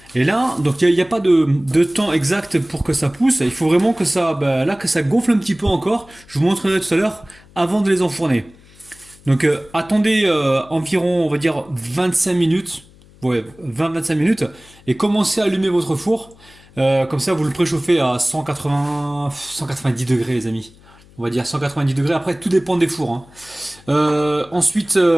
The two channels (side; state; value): left; noise; hum, 26 dB below the sound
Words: Et là, donc il n'y a pas de temps exact pour que ça pousse. Il faut vraiment que ça, que ça gonfle un petit peu encore. Je vous montrerai tout à l'heure avant de les enfourner. Donc attendez environ, on va dire 25 minutes. Ouais, 20-25 minutes. Et commencez à allumer votre four. Comme ça, vous le préchauffez à 190 degrés, les amis. On va dire 190 degrés. Après, tout dépend des fours, hein. Ensuite,